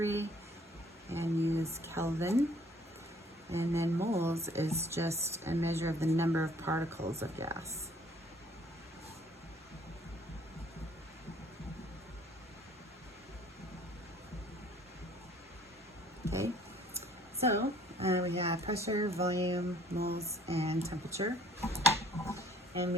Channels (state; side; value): normal; both; correlation 0.57